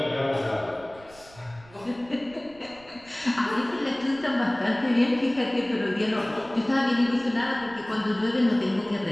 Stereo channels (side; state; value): right; noise; rumble, 24 dB below the sound